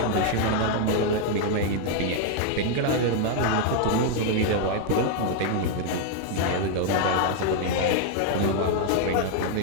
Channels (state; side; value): different; both; correlation 0.00